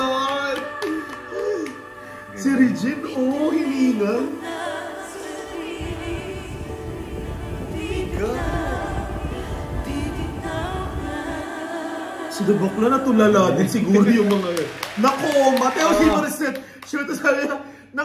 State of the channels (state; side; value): identical; both; correlation 1.00